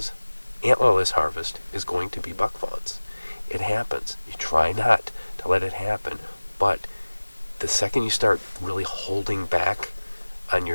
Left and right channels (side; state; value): both; inverted; correlation -1.00